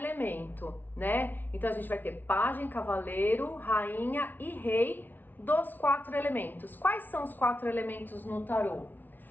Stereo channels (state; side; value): late; right; 0.088 ms